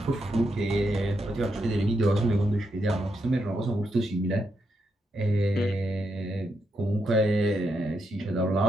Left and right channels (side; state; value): both; normal; correlation 0.82